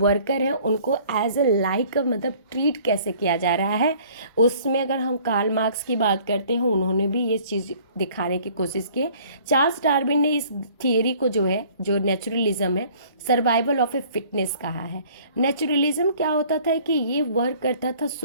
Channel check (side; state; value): both; inverted; correlation -0.54